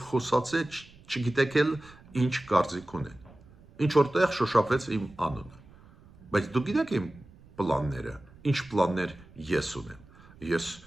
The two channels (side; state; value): right; noise; rumble, 24 dB below the sound